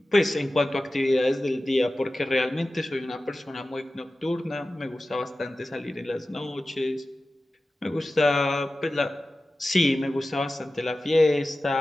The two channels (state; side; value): normal; both; correlation 0.95